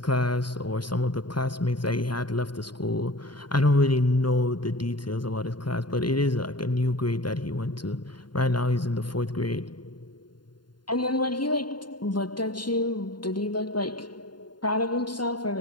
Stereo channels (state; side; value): late; right; 0.71 ms